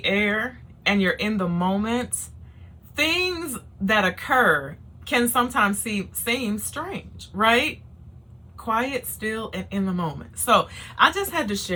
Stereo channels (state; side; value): identical; both; correlation 1.00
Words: air and you're in the moment, things that occur can sometimes seem strange, right? Quiet, still, and in the moment. So I just had to